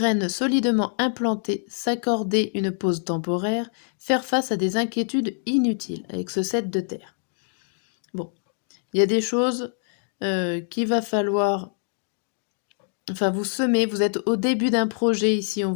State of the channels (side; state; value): right; silent; digital silence